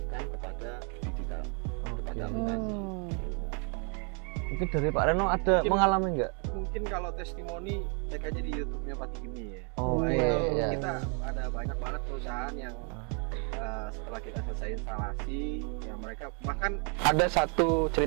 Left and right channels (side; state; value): left; quieter; 37.8 dB